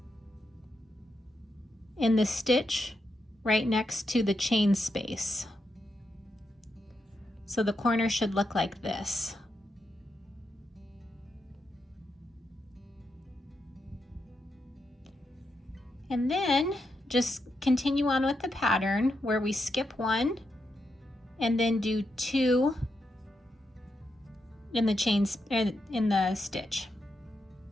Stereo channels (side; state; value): both; normal; correlation 0.84